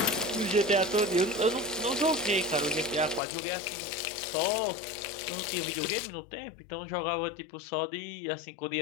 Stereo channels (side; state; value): right; drops out; at 3.2 s